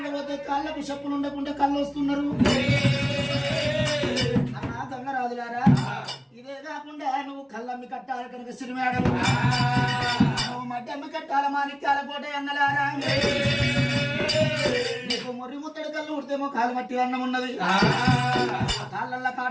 కాళ్ళకు చెప్పులు ఉండకుండా కళ్ళు వస్తున్నారు. అన్నా దొంగరాజులారా, ఇదే కాకుండా నువ్వు కళ్ళమ్మి కట్టాలి కనుక సిరిమేడలు, నువ్వు మడ్డి అమ్మి కట్టాల మాణిక్యాల కోట అన్నలారా. నీకు మొర్రి ముత్తడి కళ్ళు ఉడితేమో కాలు మట్టి అన్నం ఉన్నది. కాళ్ళల్లో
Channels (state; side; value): identical; both; correlation 1.00